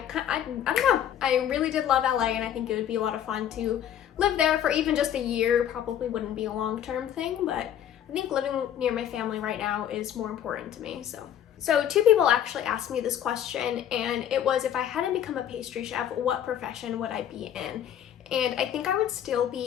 don't know. I really did love LA, and I think it would be a lot of fun to live there for even just a year. Probably wouldn't be a long-term thing, but I think living near my family right now is more important to me. So two people actually asked me this question, and it was, if I hadn't become a pastry chef, what profession would I be in? And I think I would still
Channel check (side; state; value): right; quieter; 10.2 dB